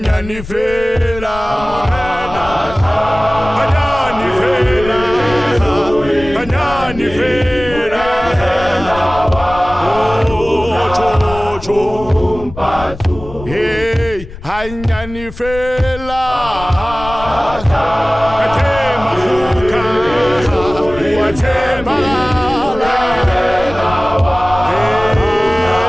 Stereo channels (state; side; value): noise; left; rumble, 13 dB below the sound